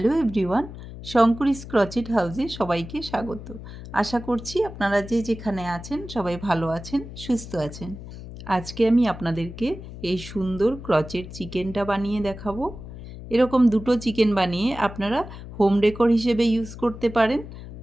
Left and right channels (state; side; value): noise; left; hum, 13 dB below the sound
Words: everyone, শঙ্করীস crochet হাউসে সবাইকে স্বাগত। আশা করছি আপনারা যে যেখানে আছেন সবাই ভালো আছেন, সুস্থ আছেন। আজকে আমি আপনাদেরকে এই সুন্দর ক্রচেট চিকেনটা বানিয়ে দেখাবো। এরকম দুটো চিকেন বানিয়ে আপনারা হোম ডেকোর হিসেবে ইউজ করতে পারেন,